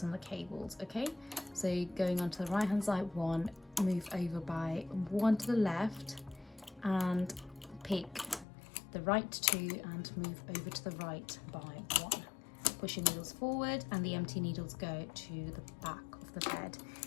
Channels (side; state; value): right; drops out; at 8.5 s